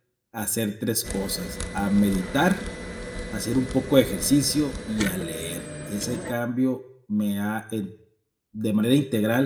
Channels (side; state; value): both; identical; correlation 1.00